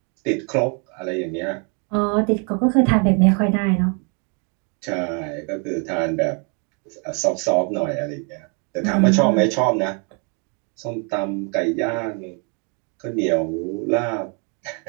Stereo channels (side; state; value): left; quieter; 37.1 dB